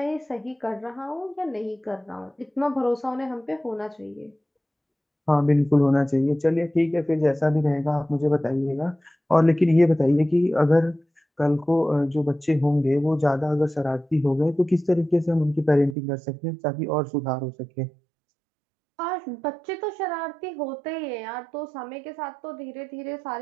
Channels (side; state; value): left; drops out; at 16.0 s